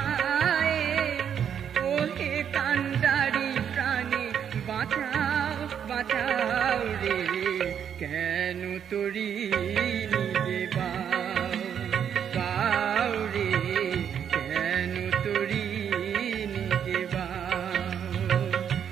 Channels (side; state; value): left; quieter; 8.4 dB